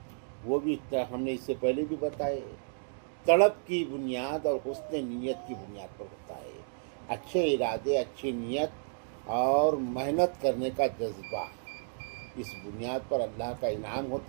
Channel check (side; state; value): left; silent; digital silence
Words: وہ بھی ہم نے اس سے پہلے بھی بتائے، طلب کی بنیاد اور حسن نیت کی بنیاد پر ہوتا ہے۔ اچھے ارادے، اچھی نیت اور محنت کرنے کا جذبہ، اس بنیاد پر اللہ کا انعام